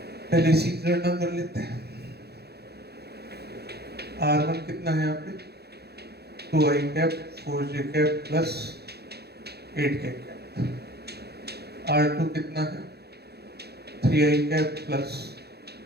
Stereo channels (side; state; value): left; late; 0.47 ms